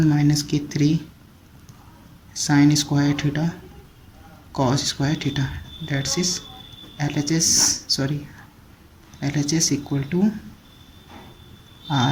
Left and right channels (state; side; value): identical; both; correlation 1.00